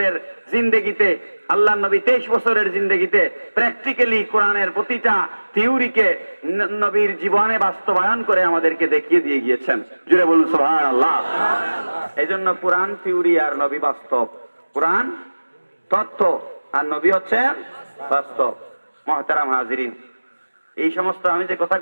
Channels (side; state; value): both; inverted; correlation -1.00